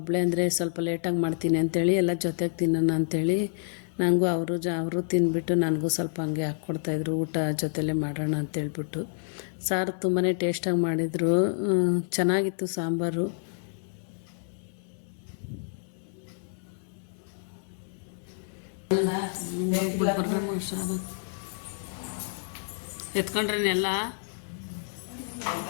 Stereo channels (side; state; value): right; silent; digital silence